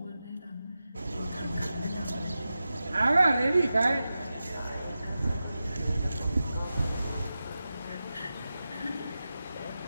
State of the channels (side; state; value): both; inverted; correlation -0.92